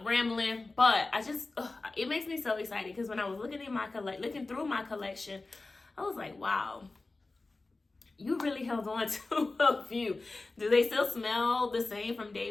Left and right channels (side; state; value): right; quieter; 3.4 dB